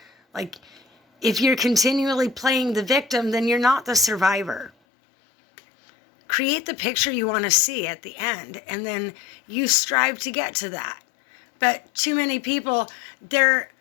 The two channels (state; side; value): drops out; right; at 4.7 s